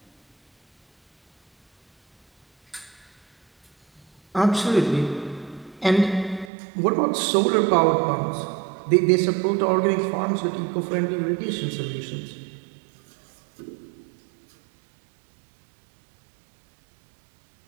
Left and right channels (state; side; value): drops out; left; at 6.5 s